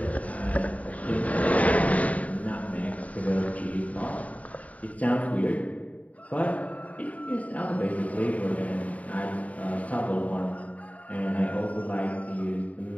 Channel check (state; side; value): late; right; 0.069 ms